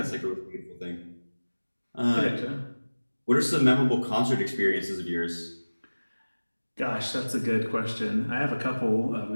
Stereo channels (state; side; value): inverted; both; correlation -1.00